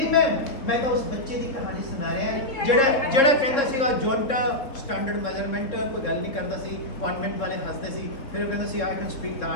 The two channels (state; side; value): late; right; 3.7 ms